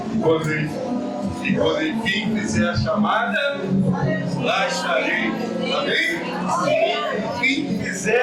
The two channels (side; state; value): both; identical; correlation 1.00